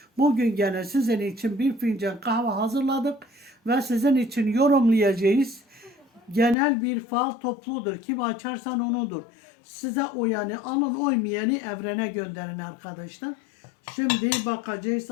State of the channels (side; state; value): right; drops out; at 6.6 s